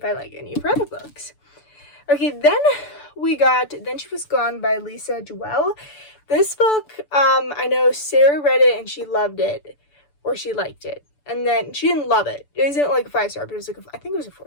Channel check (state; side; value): late; right; 6.9 ms